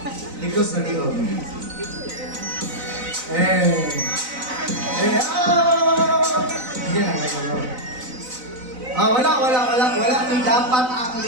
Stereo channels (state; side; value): late; left; 4.0 ms